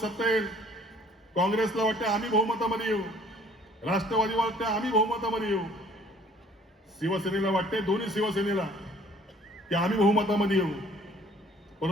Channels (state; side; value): normal; both; correlation 0.56